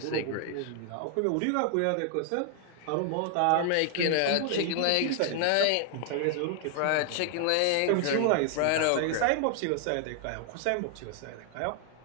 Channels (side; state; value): both; different; correlation 0.00